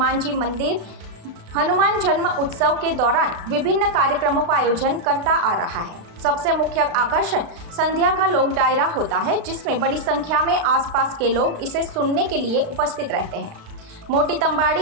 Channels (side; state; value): left; late; 36 ms